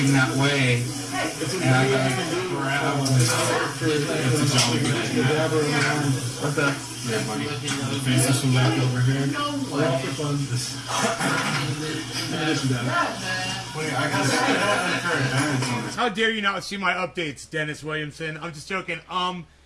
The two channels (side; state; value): both; identical; correlation 1.00